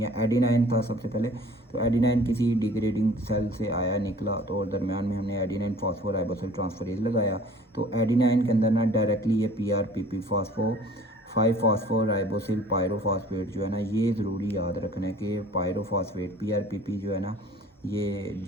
या एडिनाइन था सबसे पहले, तो एडिनाइन किसी डिग्रेडिंग सेल से आया निकला, तो और दरमियान में हमने एडिनाइन फॉस्फोराइबोसिल ट्रांसफरेज लगाया, तो एडिनाइन के अंदर ना डायरेक्टली ये PRPP फॉस्फो 5-फॉस्फोराइबोसिल पायरोफॉस्फेट जो है ना, ये ज़रूरी याद रखना है कि पायरोफॉस्फेट PRPP जो है ना, ये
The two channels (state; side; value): normal; both; correlation 0.50